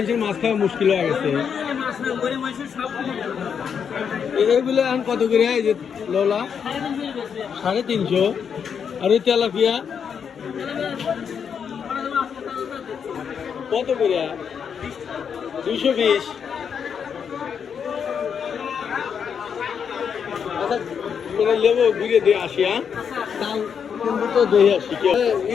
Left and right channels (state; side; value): quieter; right; 7.2 dB